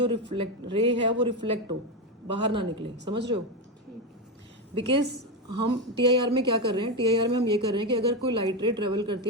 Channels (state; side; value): normal; both; correlation 0.11